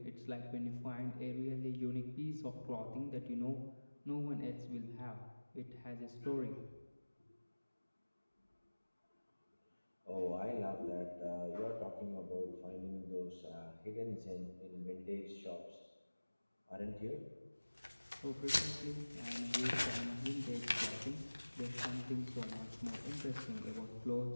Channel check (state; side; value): inverted; both; correlation -1.00